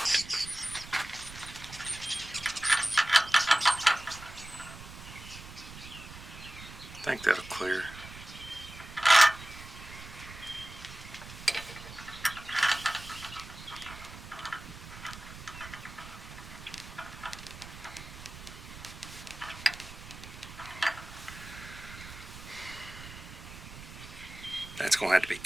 I think that'll clear. That's going to have to be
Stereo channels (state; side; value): noise; right; rumble, 14 dB below the sound